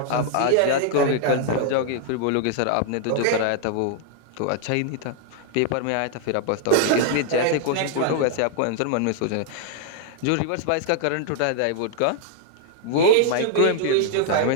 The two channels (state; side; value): different; both; correlation 0.00